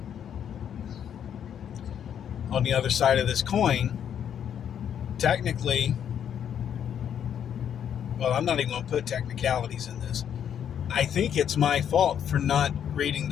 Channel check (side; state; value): right; quieter; 8.9 dB